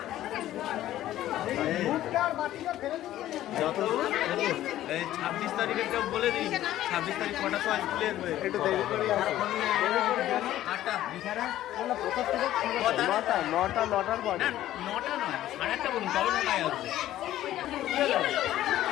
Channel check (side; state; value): right; quieter; 13.6 dB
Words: যত 26 তারিখে কেউ বলে দিই, 26 তারিখ কটা সময় স্কুলে একটু দেরি করে নটার পর, নটা নয় 8:30 বলুন, তবে 9টায় আসবে।